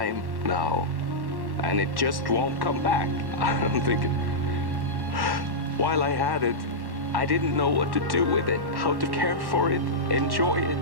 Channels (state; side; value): late; left; 1.1 ms